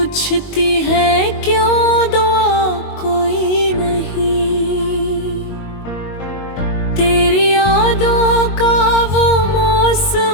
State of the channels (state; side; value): late; right; 22 ms